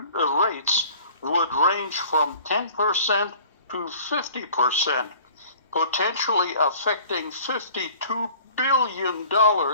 rates would range from 10% to 50%, potentially affecting $52 billion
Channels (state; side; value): inverted; both; correlation -0.49